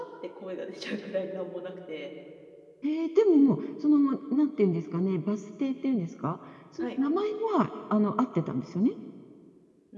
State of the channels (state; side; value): identical; both; correlation 1.00